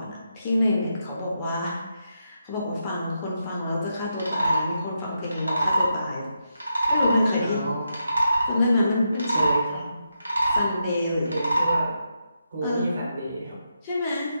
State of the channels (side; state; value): both; inverted; correlation -0.84